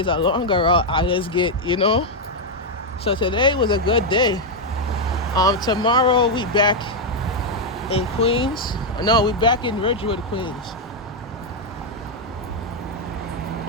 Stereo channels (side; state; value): both; normal; correlation 0.00